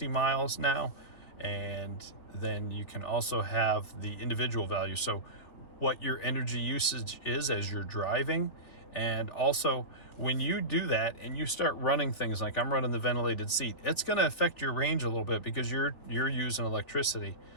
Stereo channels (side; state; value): right; late; 3.7 ms